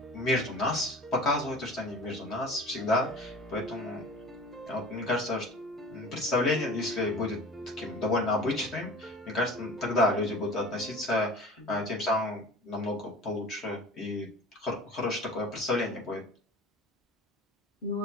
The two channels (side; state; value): both; normal; correlation 0.40